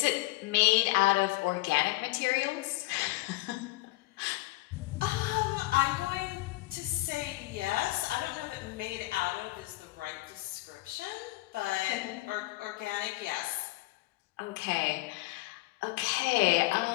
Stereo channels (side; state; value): right; quieter; 20.9 dB